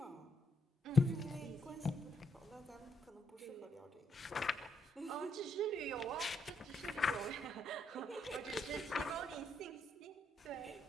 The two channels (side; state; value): both; normal; correlation 0.77